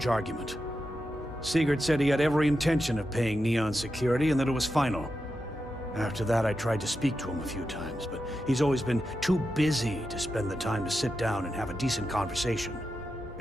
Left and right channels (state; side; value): normal; both; correlation 0.89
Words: argument. Sigurd said he had every intention of paying Neon security and that it was final. After that, I tried to speak to him a few times, but he's always been too busy to spend the time to sit down and have a decent conversation.